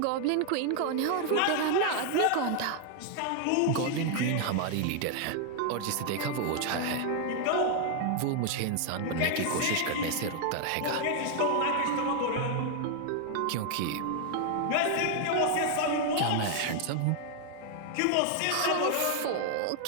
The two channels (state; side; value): different; both; correlation 0.00